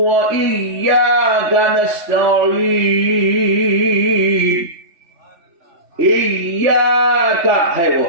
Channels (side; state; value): left; late; 3.3 ms